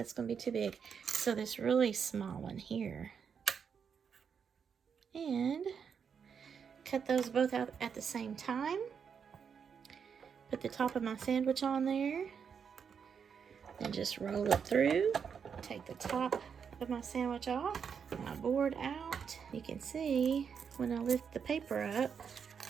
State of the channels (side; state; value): left; quieter; 6.8 dB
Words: going to be too big. So this really small one here. And cut those both out at the same time. Put the top of my sandwich on there. And just roll it through. Take the top of my sandwich off. My board out. You can see when I lift the paper up,